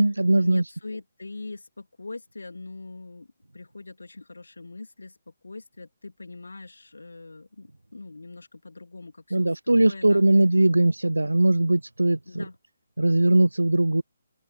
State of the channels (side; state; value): both; inverted; correlation -1.00